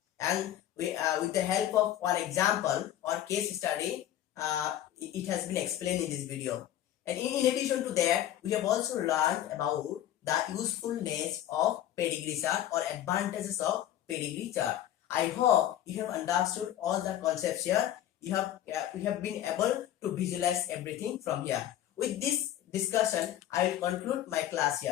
and with the help of one example or case study it has been explained in this video. And in addition to that, we have also learned about the usefulness of pedigree chart or advantages of pedigree chart. I hope you have understood all the concepts here. We have been able to visualize everything from here. With this discussion, I will conclude my class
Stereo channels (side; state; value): right; quieter; 12.1 dB